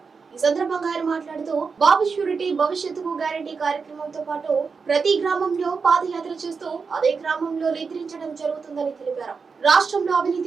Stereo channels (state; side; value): quieter; left; 5.2 dB